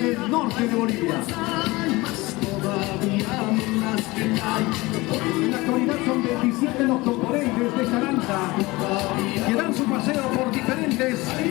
norte de Bolivia. En la actualidad son 27 los componentes de esta danza que dan su paseo por diferentes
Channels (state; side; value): quieter; right; 21.7 dB